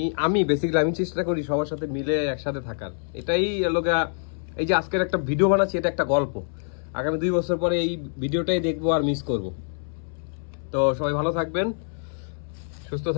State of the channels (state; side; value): silent; right; 61 dB below the other